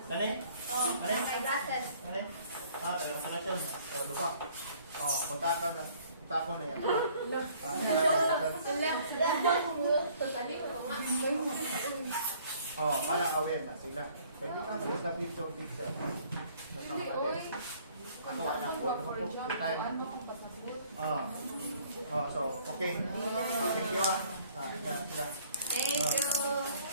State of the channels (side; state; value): both; inverted; correlation -0.58